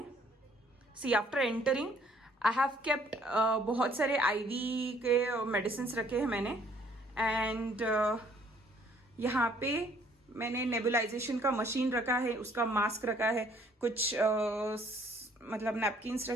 see after entering I have kept बहुत सारे आईवी के मेडिसिन रखे हैं मैंने। एंड यहाँ पे मैंने नेबुलाइजेशन का मशीन रखा है, उसका मास्क रखा है, कुछ मतलब नैपकिन्स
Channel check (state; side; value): normal; both; correlation 0.61